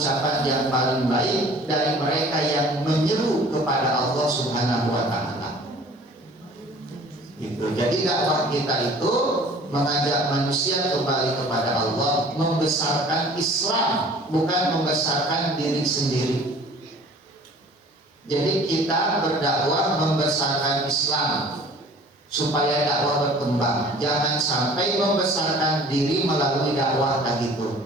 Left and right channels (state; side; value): normal; both; correlation 0.49